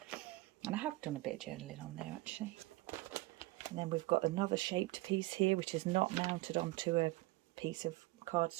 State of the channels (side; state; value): left; quieter; 20.1 dB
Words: And I have done a bit of journaling on there, actually. And then we've got another shaped piece here, which is not mounted onto a piece of